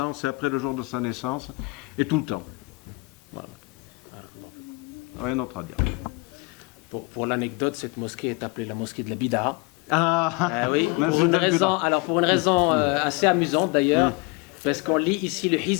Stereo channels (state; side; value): quieter; right; 26.8 dB